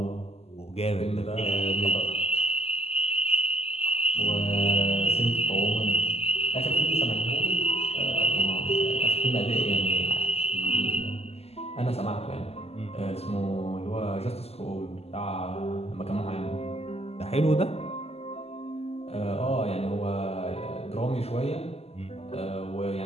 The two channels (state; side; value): late; right; 0.29 ms